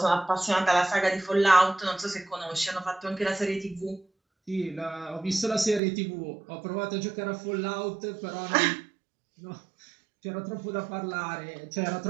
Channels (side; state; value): left; drops out; at 5.8 s